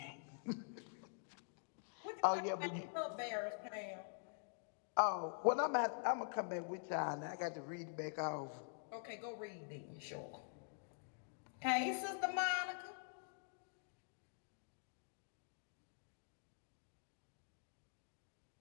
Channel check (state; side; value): silent; right; digital silence